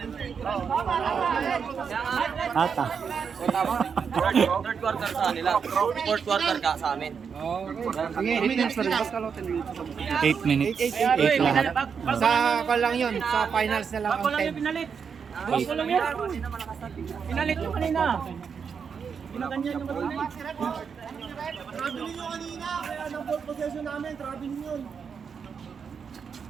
Ata. Third quarter sa nila. Fourth quarter ka sa amin. 8 minutes. 8 lahat. Sa lang yun, sa finals na lang ang 10. Pinalit. Bago lang yan. Pinalit yung kanina. Pinaganyan yung kanina.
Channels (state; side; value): quieter; left; 6.4 dB